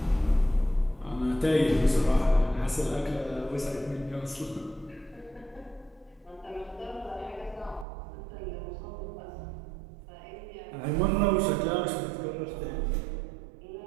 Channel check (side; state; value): left; drops out; at 7.9 s